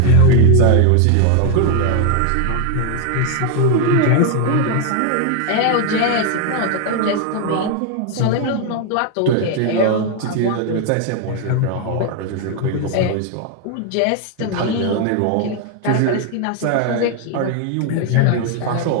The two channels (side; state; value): both; different; correlation 0.01